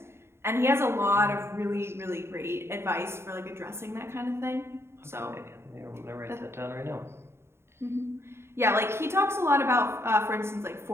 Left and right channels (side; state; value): left; late; 0.12 ms